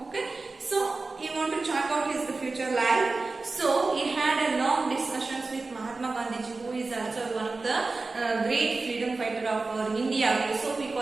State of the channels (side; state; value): left; quieter; 3.7 dB